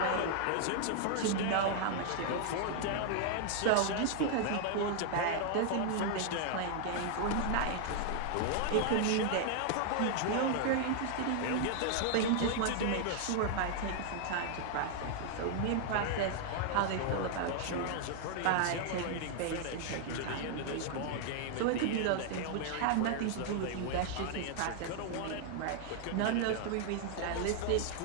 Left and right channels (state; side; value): different; both; correlation 0.00